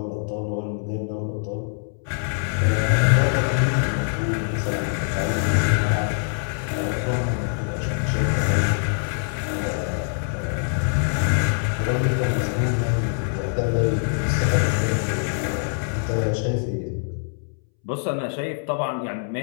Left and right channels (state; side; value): silent; right; 63 dB below the other